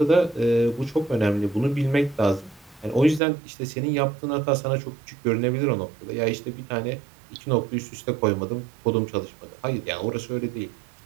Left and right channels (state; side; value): drops out; left; at 3.2 s